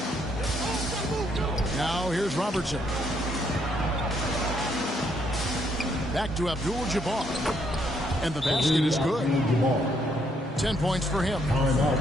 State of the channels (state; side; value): normal; both; correlation 0.72